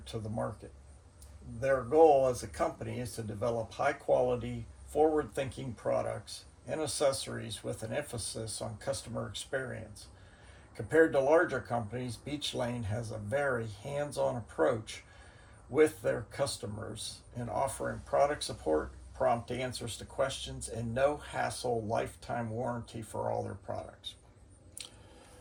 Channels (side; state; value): both; identical; correlation 1.00